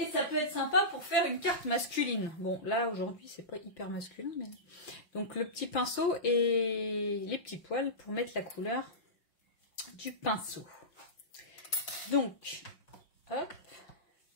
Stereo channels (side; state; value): right; late; 5.6 ms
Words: ça peut être sympa pour faire une carte masculine. Bon, là aujourd'hui c'est pas hyper masculin, mais donc le petit pinceau et les petits poils pour mettre la couleur du pinceau. Donc, hop.